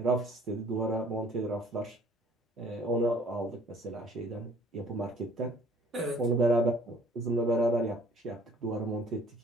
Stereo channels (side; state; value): both; normal; correlation 0.55